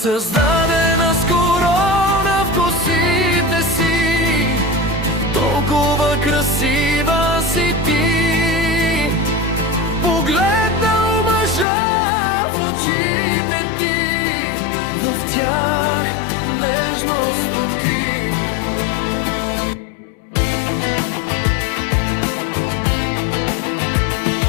с корона в косите си, толкова красива си ти. Погледнал мъжа в очите ти, в тях нежност откри.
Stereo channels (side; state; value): right; drops out; at 11.7 s